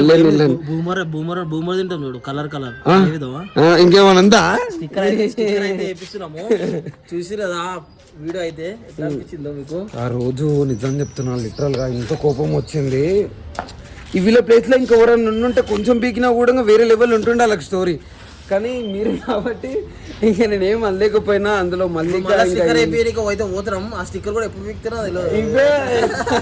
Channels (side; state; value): both; identical; correlation 1.00